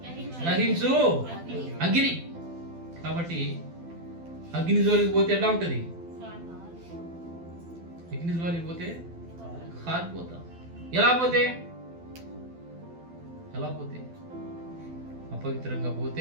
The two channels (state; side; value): late; left; 12 ms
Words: దహించు అగ్ని. కాబట్టి అగ్ని జోలికి పోతే ఎలా ఉంటుంది? అగ్ని జోలికి పోతే కాలిపోతాం. ఎలా పోతే అపవిత్రంగా